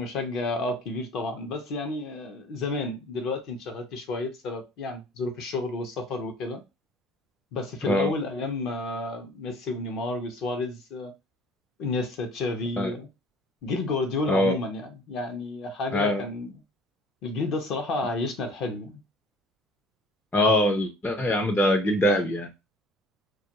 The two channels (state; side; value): normal; both; correlation 0.50